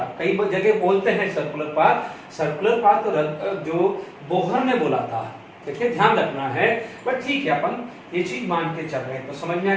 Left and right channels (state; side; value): identical; both; correlation 1.00